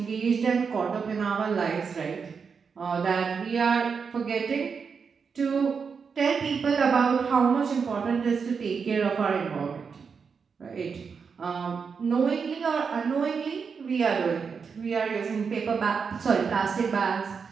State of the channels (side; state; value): left; quieter; 5.8 dB